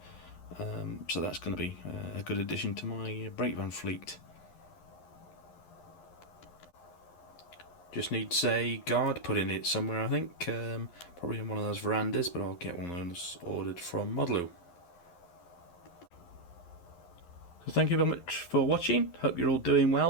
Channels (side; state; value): right; late; 11 ms